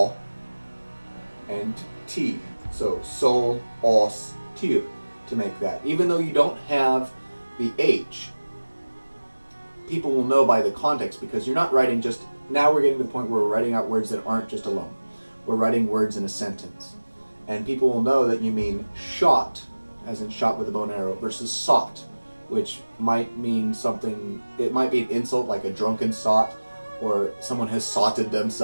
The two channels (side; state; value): both; inverted; correlation -1.00